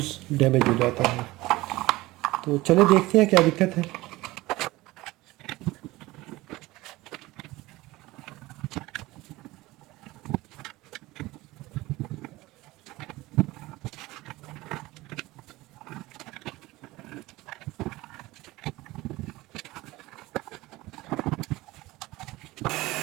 डैमेज हो जाता है। तो चले देखते हैं क्या दिक्कत है।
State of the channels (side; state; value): left; quieter; 19.4 dB